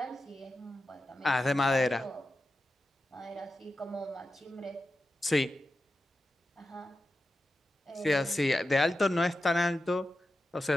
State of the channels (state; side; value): normal; both; correlation 0.91